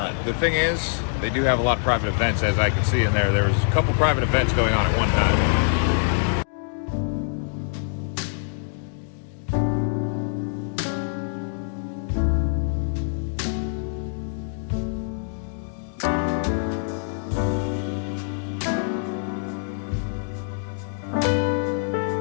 The thing is, they do have a lot of private events, as I can see in there. There was a couple private events going on at one time.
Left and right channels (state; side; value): silent; right; 62 dB below the other